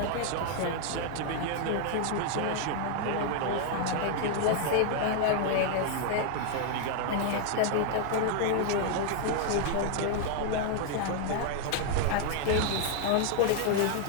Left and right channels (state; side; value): different; both; correlation 0.00